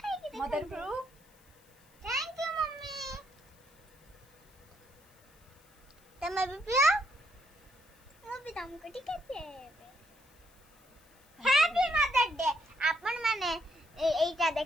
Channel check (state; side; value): noise; left; hiss, 30 dB below the sound